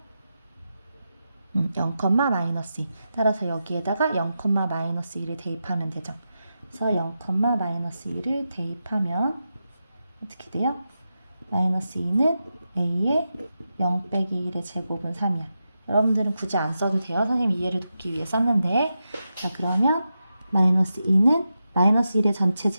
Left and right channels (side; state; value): both; inverted; correlation -0.89